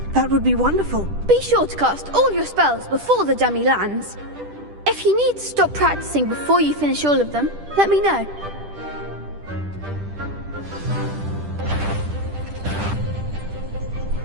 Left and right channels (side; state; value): left; late; 10 ms